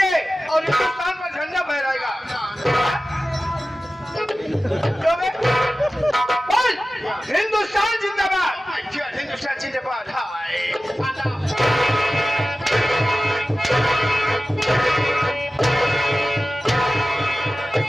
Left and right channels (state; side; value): normal; both; correlation 0.95